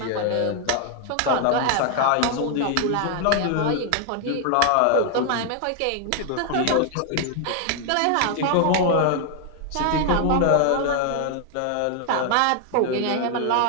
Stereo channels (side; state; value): both; different; correlation 0.00